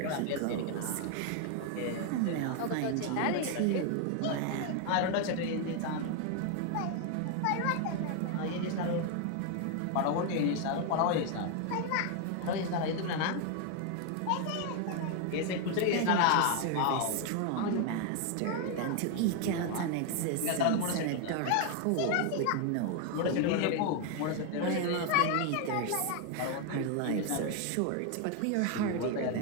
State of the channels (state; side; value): different; both; correlation 0.01